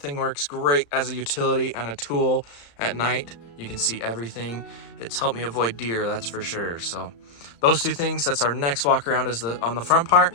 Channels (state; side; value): late; right; 35 ms